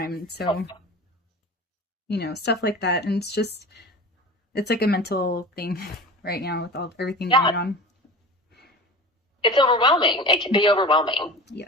And so, stuff like that. And it's just, It's like a mental thing right now with everything Yeah. going on. It's overwhelming. It can be overwhelming.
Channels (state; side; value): normal; both; correlation 0.34